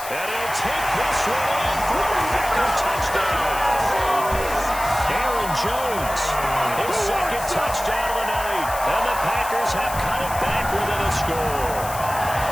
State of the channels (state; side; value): noise; left; hiss, 11 dB below the sound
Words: And he'll take this one in for a Packer touchdown. Aaron Jones, his 2nd touchdown of the night. And the Packers have cut it back within a score.